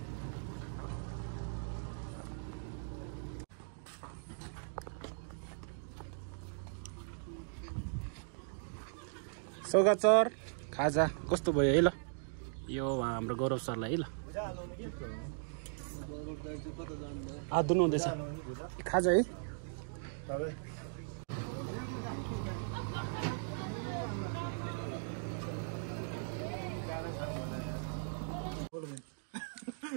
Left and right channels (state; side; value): silent; left; digital silence